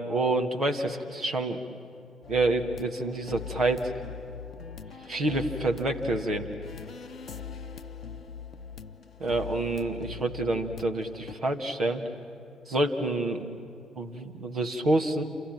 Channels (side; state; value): both; normal; correlation 0.68